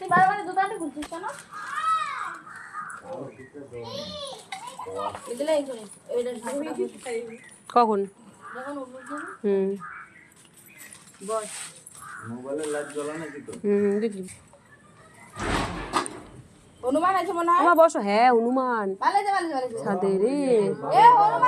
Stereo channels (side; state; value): both; identical; correlation 1.00